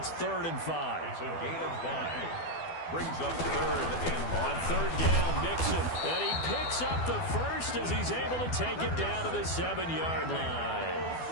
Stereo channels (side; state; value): right; late; 12 ms